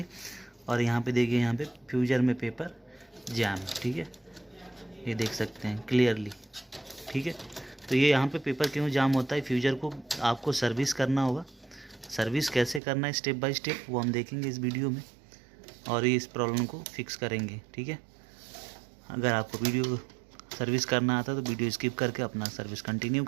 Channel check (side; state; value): left; drops out; at 12.8 s